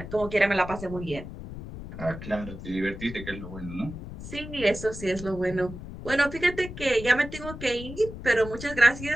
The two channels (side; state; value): left; noise; rumble, 11 dB below the sound